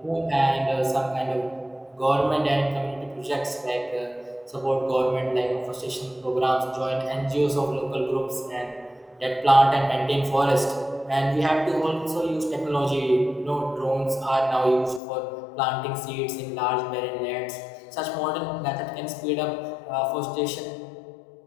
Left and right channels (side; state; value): right; drops out; at 15.0 s